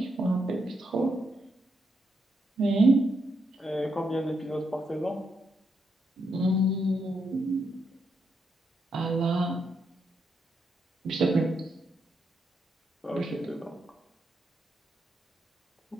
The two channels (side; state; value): both; normal; correlation 0.80